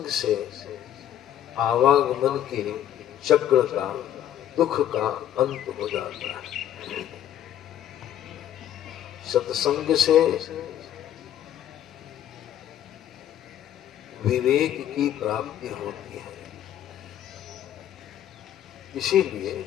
से आवागमन के चक्र का दुख का अंत हो जाता है। सत्संग से विवेक की प्राप्ति होती है। इसीलिए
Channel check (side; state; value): right; quieter; 11.1 dB